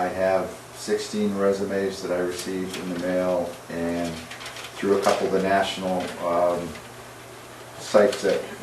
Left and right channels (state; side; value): identical; both; correlation 1.00